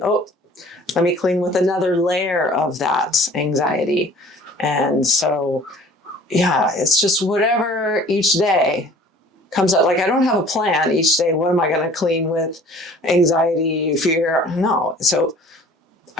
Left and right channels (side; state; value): both; normal; correlation 0.49